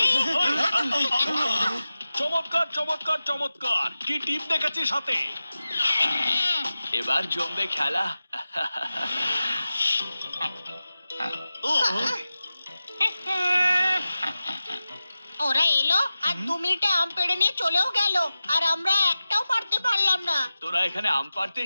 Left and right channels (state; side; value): inverted; both; correlation -0.94